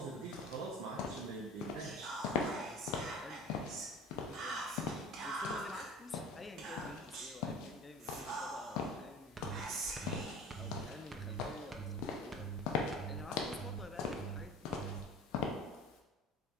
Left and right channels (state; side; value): normal; both; correlation 0.39